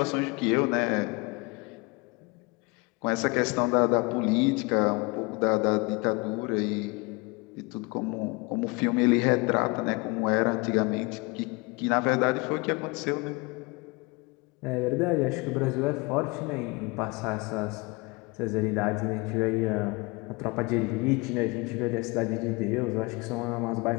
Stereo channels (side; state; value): right; quieter; 26.9 dB